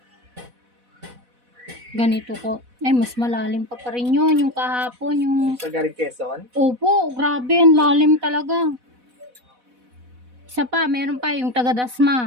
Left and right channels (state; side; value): late; left; 4.1 ms